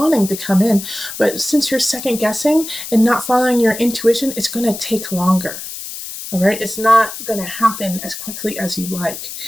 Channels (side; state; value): left; noise; hiss, 9 dB below the sound